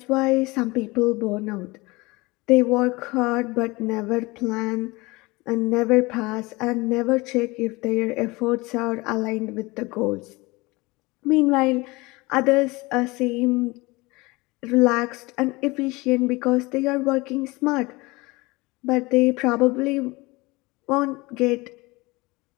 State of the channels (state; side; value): quieter; right; 23.3 dB